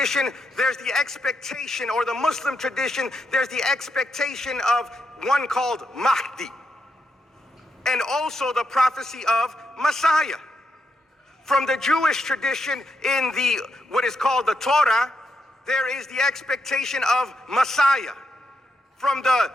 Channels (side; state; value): both; normal; correlation 0.82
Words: there's the expectation, or the Muslim tradition, there's the expectation of one called Mahdi, and also the prophecy of Messiah. From the Jewish tradition, in what is called the Torah, there is the expectation of Messiah. From the